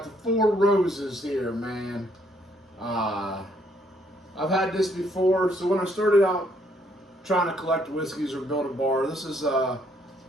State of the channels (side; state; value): both; normal; correlation 0.69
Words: the Four Roses here, man. I've had this before, so when I started out trying to collect whiskeys or build a bar, this is